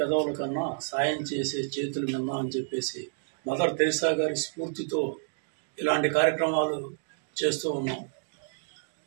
కన్నా సాయం చేసే చేతులు మిన్నా అని చెప్పేసి మదర్ తెరిసా గారి స్ఫూర్తితో ఇలాంటి కార్యక్రమాలు చేస్తూ ఉన్నాం.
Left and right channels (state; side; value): silent; left; digital silence